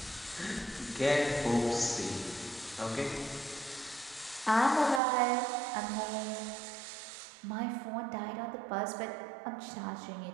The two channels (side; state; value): left; drops out; at 5.0 s